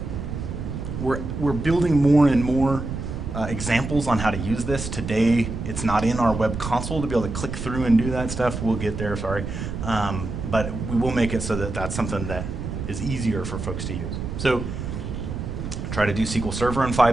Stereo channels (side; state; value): right; noise; rumble, 6 dB below the sound